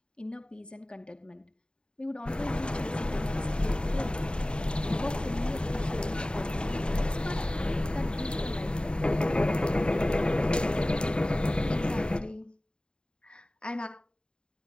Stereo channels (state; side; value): late; right; 0.051 ms